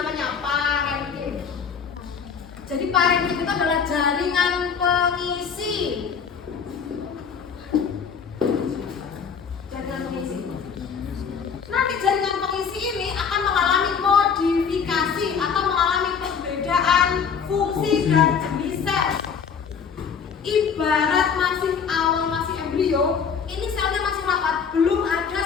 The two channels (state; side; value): quieter; right; 6.5 dB